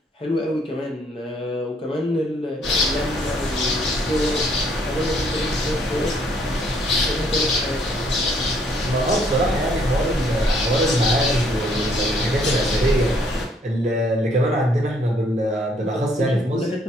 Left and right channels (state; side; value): normal; both; correlation 0.66